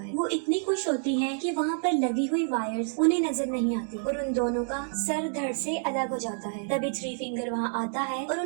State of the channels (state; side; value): silent; left; 59 dB below the other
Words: वो इतनी खुश होती है कि वहाँ पर लगी हुई वायर्स उन्हें नजर नहीं आती और उन दोनों का सर धड़ से अलग हो जाता है। तभी थ्री फिंगर वहाँ आता है और